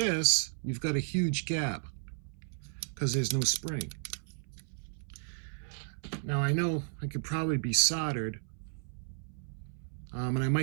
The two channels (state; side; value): silent; left; 55 dB below the other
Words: you've got a huge gap because there's no spring. Now I know I could probably be soldered, and I